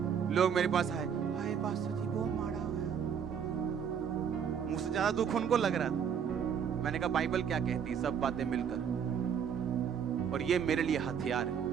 लोग मेरे पास आए, हाय पास्टर जी वो मारा हुआ, मुझसे ज्यादा दुख उनको लग रहा था। मैंने कहा बाइबल क्या कहती है, सब बातें मिलकर, और ये मेरे लिए हथियार है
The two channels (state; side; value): quieter; left; 7.7 dB